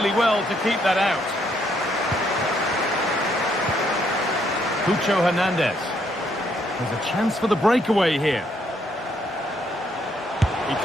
well to keep that out. Cucho Hernandez. There's a chance for the breakaway here. He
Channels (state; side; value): normal; both; correlation 0.72